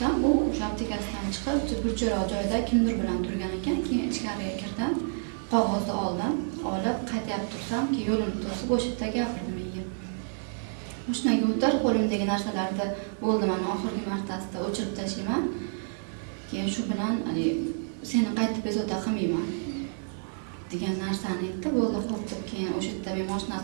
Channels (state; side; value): silent; left; digital silence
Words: u o'sha aptekasidan chiqib, burchakroq joyda kimdir bilan turgan ekan. Keyin ichkariga kirdim. Qog'ozni olib qaytib tursam, ki yo'limni to'sib o'sha yerda gapirdi menga. Mashinaga o'tir, qo'limdagi narsalarni bo'ldi, mana oxirgi martasida o'chirib tashlayman. Keyin shu bilan seni qaytib bezovta qilmayman degan narsani aytdi. Bo'ldi, xo'p deb keyin o'sha yerda men